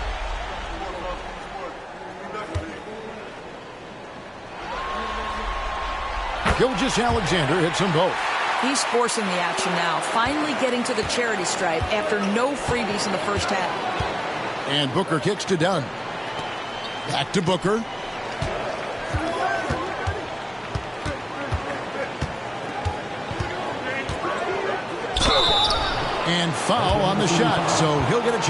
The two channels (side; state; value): both; identical; correlation 1.00